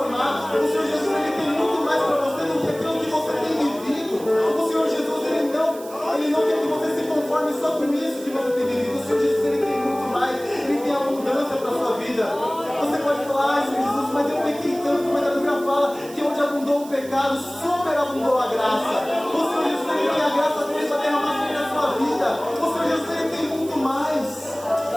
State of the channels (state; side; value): noise; right; hiss, 18 dB below the sound